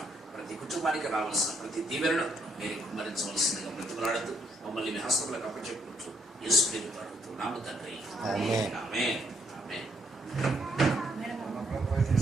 ప్రతి కుటుంబానికి రావాల్సిన ప్రతి దీవెనను మీరు కుమ్మరించవలసిందిగా బ్రతిమలాడుతూ మమ్మల్ని మీ హస్తములకు అప్పచెప్పుకుంటూ యేసు పేరుతో అడుగుతున్నాము తండ్రి. ఆమేన్. ఆమేన్. ఆమేన్.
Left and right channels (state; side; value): normal; both; correlation 0.72